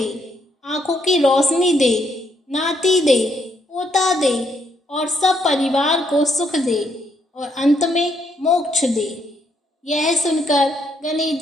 आंखों की रोशनी दे, नाती दे, पोता दे और सब परिवार को सुख दे और अंत में मोक्ष दे। यह सुनकर गणेश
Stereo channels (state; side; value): normal; both; correlation 0.74